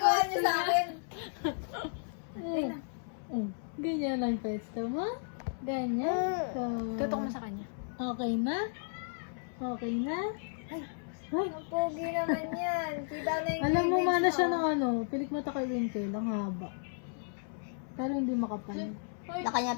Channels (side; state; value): right; silent; 55 dB below the other